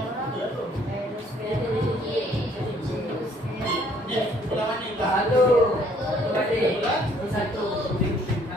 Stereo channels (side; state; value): both; normal; correlation 0.62